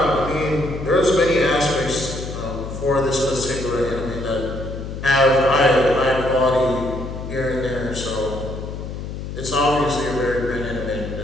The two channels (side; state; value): left; noise; hum, 8 dB below the sound